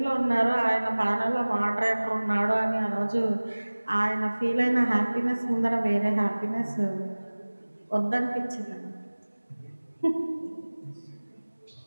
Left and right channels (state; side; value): inverted; both; correlation -1.00